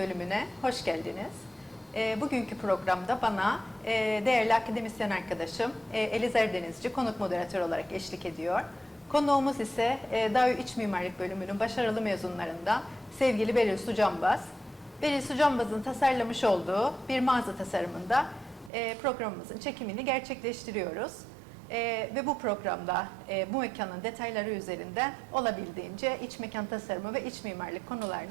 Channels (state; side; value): drops out; left; at 18.7 s